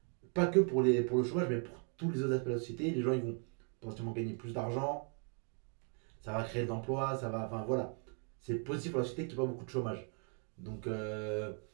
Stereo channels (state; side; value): quieter; left; 39.8 dB